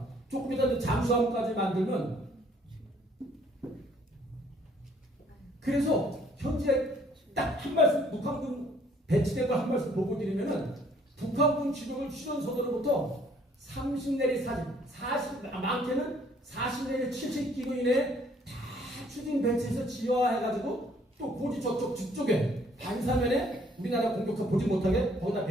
조금 이따 잠수함까지 만들면 그래서 현재 딱 한 말씀 북한군 배치된 걸 한 말씀 보고 드리면은 북한군 주력을 휴전선으로부터 30 내리 40 많게는 40 내리 70km 이내에 다 추진 배치해서 지화해가지고 또 고지 저쪽 뒤쪽에 반사면에 우리나라 공격사 보지 못하게 거기다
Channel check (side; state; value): both; normal; correlation 0.62